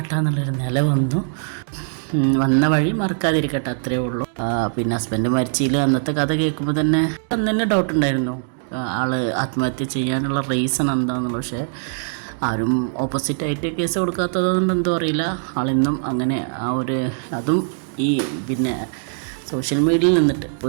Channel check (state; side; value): silent; left; digital silence